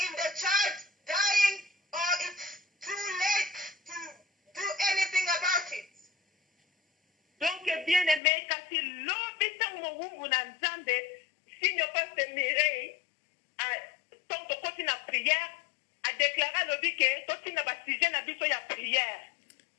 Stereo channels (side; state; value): right; drops out; at 8.2 s